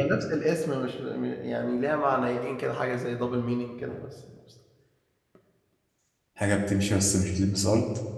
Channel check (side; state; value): both; identical; correlation 1.00